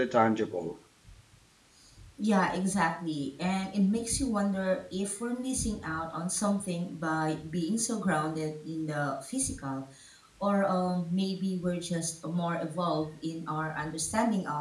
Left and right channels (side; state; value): both; identical; correlation 1.00